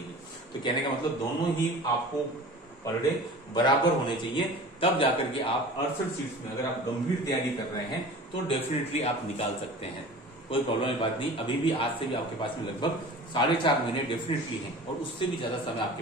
तो कहने का मतलब दोनों ही आपको पर डे बराबर होने चाहिए, तब जाकर के आप 68 सीट्स में अगर आप गंभीर तैयारी कर रहे हैं तो डेफिनेटली आप निकाल सकते हैं, कोई प्रॉब्लम की बात नहीं। अभी भी आज से भी आपके पास में लगभग 4.5 महीने डेफिनेटली हैं, और उससे भी ज्यादा समय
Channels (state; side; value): normal; both; correlation 0.39